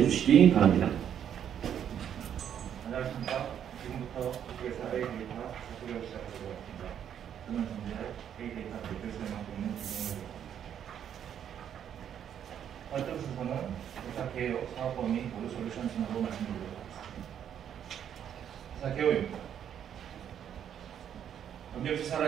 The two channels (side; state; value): left; quieter; 9.2 dB